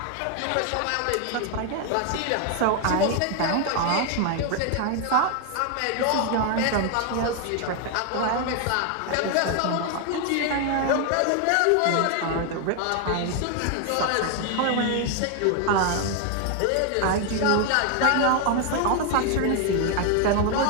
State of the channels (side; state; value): both; different; correlation 0.00